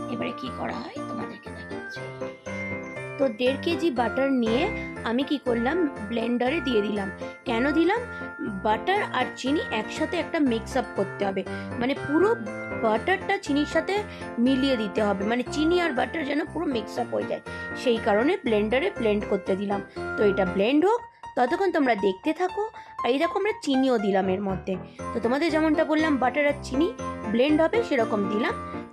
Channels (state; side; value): identical; both; correlation 1.00